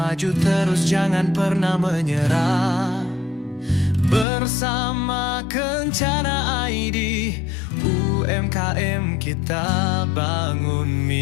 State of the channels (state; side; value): drops out; right; at 4.2 s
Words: terus, jangan pernah menyerah. Bersama Kencana ID, UMKM kita bangun